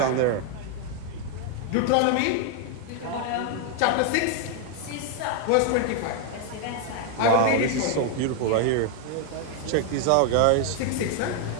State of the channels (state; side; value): different; both; correlation 0.00